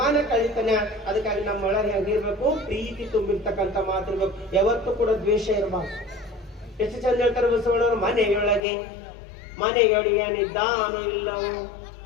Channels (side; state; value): right; drops out; at 8.6 s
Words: ಕಳಿತಾನ. ಅದಕ್ಕಾಗಿ ನಮ್ಮ ಒಳಗೆ ಹೆಂಗಿರ್ಬೇಕು, ಪ್ರೀತಿ ತುಂಬಿರ್ತಕ್ಕಂಥ ಮಾತಿರ್ಬೇಕು. ಯಾವತ್ತೂ ಕೂಡ ದ್ವೇಷ ಇರಬಾರ್ದು. ಎಷ್ಟು ಚಂದ ಹೇಳ್ತಾರೆ ಬಸವಣ್ಣವರು, ಮನೆಯೊಳಗಿದ್ದಾನೋ ಇಲ್ಲವೋ